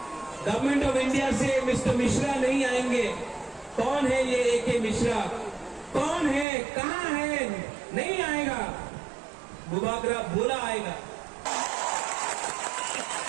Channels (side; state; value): left; drops out; at 6.5 s